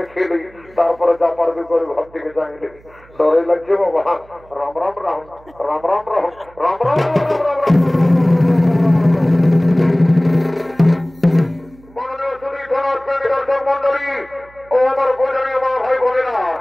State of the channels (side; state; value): right; noise; hum, 26 dB below the sound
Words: লি তারপরে যা পারবি করে ঘর থেকে যাইলি ডরে লাগছে বাবা রাম রাম রাম রাম রাম রাম রাম রাম রাম রাম মাননীয় সুধী থানার দর্শক মন্ডলী ও আমার পূজনীয় মা ভাই বোনেরা